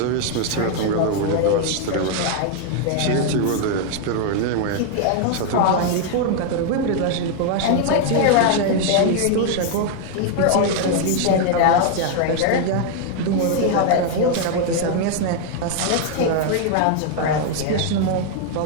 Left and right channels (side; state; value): both; different; correlation 0.00